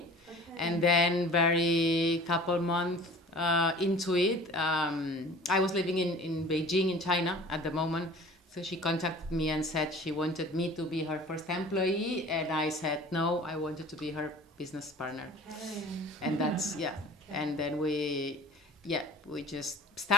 Okay. And then very couple months into it, I was living in Beijing, in China at the moment. So she contacted me and said she wanted me to be her first employee, and I said no, I wanted to be her business partner. Okay. And that's and then we just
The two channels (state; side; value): normal; both; correlation 0.44